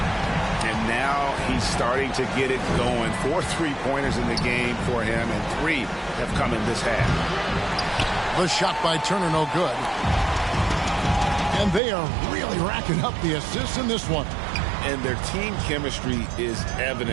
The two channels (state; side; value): drops out; left; at 11.8 s